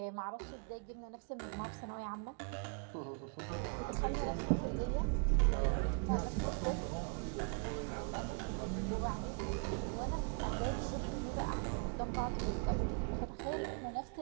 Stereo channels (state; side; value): quieter; left; 39.4 dB